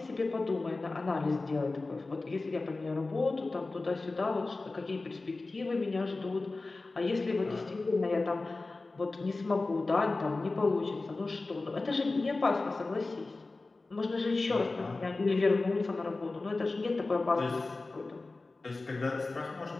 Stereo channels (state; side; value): quieter; right; 3.4 dB